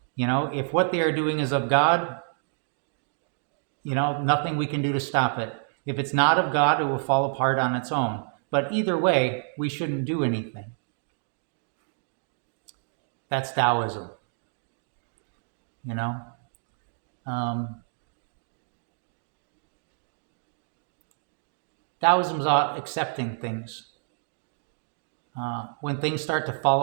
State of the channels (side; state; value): left; silent; digital silence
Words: If what they are doing is of God, nothing we can do to stop it. If it's not of God, it will fall apart on its own. But either way, we shouldn't do anything. That's Taoism. Taoism's about accepting things. When things start to